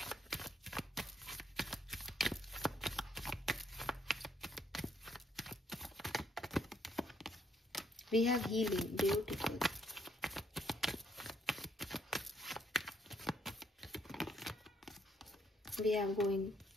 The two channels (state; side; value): normal; both; correlation 0.70